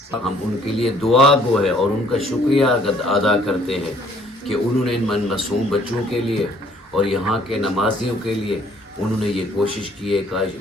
ہم ان کے لیے دعا گو ہے اور ان کا شکریہ ادا کرتے ہیں کہ انہوں نے ان معصوم بچوں کے لیے اور یہاں کے نمازیوں کے لیے انہوں نے یہ کوشش کی ہے،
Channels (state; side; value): normal; both; correlation 0.60